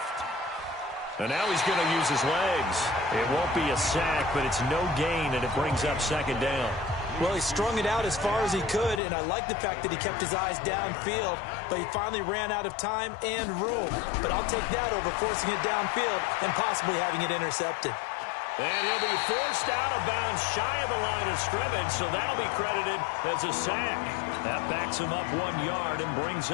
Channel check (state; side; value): drops out; right; at 9.0 s